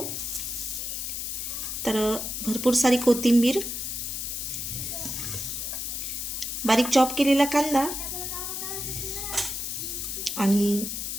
तर भरपूर सारी कोथिंबीर, बारीक चॉप केलेला कांदा आणि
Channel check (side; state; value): left; noise; hiss, 4 dB below the sound